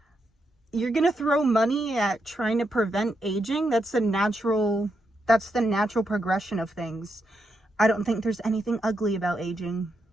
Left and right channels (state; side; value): normal; both; correlation 0.82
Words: you're gonna throw money at trying to prevent aging? That's the natural progression of things. I don't think there's anything ugly about aging.